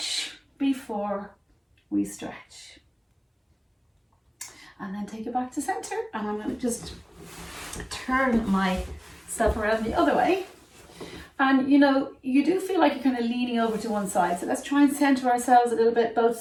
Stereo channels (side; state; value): both; identical; correlation 1.00